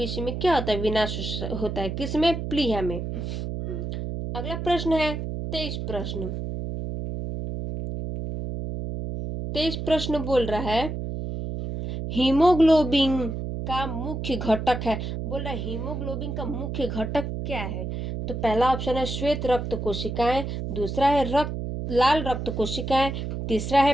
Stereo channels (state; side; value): noise; right; hum, 4 dB below the sound